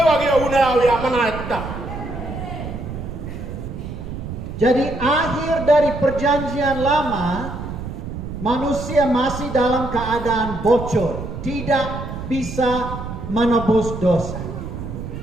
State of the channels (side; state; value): right; noise; rumble, 8 dB below the sound